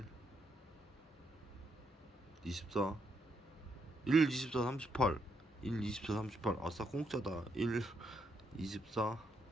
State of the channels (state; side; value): normal; both; correlation 0.78